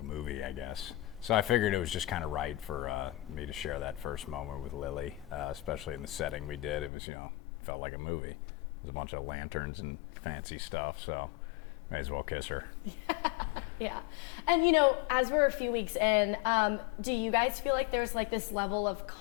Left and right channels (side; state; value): right; drops out; at 6.9 s